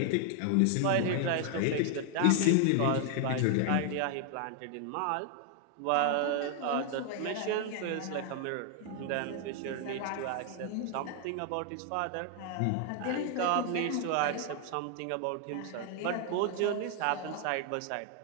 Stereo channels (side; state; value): both; different; correlation 0.00